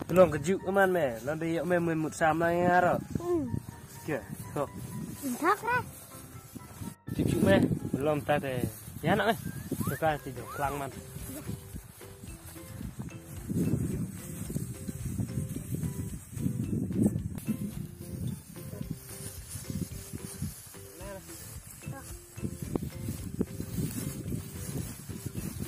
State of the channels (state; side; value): identical; both; correlation 1.00